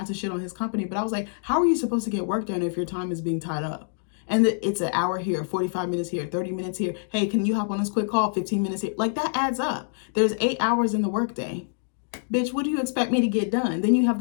to shit on his company, but I was like, how are you supposed to get work done if your time is being tied up? And it's an hour here, 45 minutes here, 30 minutes here. Hey, can you hop on this quick call? 15 minutes here. Like that adds up. There's 8 hours in the workday. Bitch, what do you expect me to get done? Then you have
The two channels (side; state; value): right; silent; digital silence